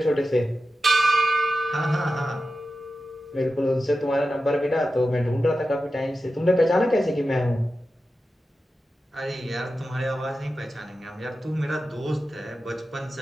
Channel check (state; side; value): normal; both; correlation 0.92